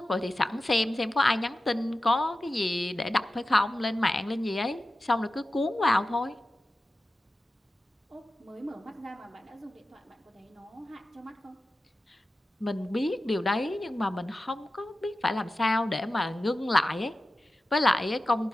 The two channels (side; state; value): both; normal; correlation 0.94